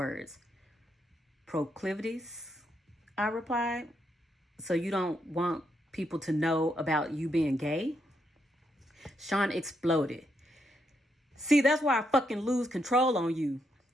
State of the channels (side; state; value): both; normal; correlation 0.79